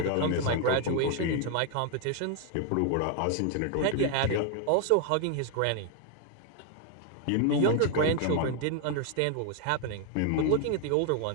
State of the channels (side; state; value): both; different; correlation 0.00